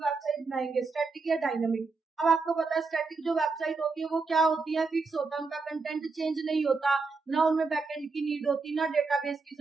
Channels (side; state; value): left; quieter; 4.2 dB